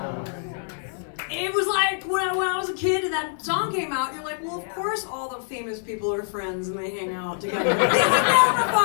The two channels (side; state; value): right; silent; 62 dB below the other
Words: It was like when I was a kid and that song came out, you're like, well, of course all the famous people are friends and they hang out together. This would never